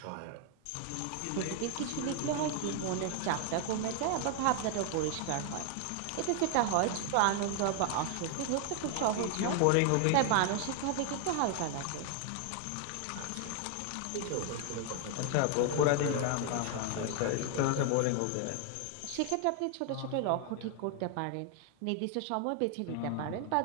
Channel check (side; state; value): both; different; correlation 0.00